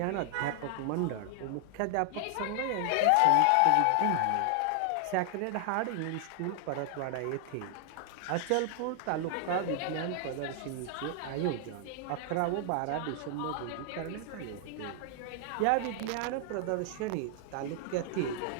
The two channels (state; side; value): different; both; correlation 0.00